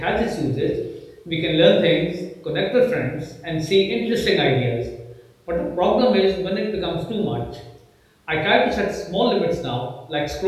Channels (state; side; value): identical; both; correlation 1.00